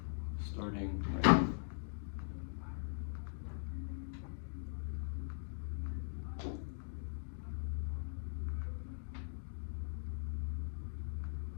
starting right now.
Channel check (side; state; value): right; silent; digital silence